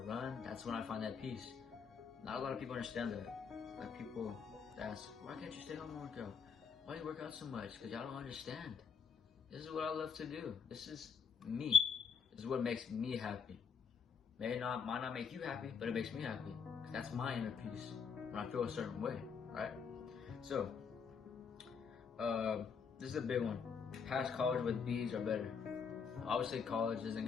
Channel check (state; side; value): quieter; right; 6.2 dB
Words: run, that's when I find that peace. Not a lot of people understand that. Like people ask, why can't you stay home and work out? Why do you work out so much? Because y'all don't understand. This is what I love to do. This is me. This is what makes me happy. Might not make you happy, but it makes me happy. Because that's my inner peace when I feel a certain way, right? So, this is a big one. Pass college with B's are better. Obviously, college isn't